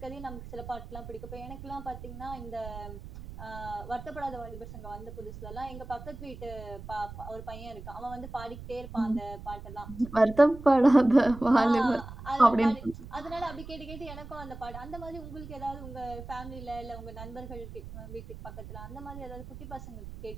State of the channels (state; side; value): noise; right; rumble, 12 dB below the sound